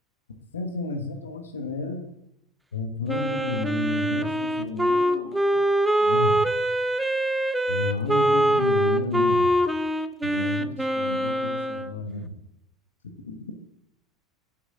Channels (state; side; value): normal; both; correlation 0.72